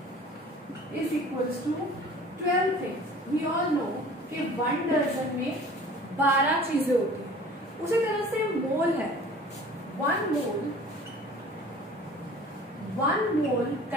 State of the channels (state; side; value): normal; both; correlation 0.46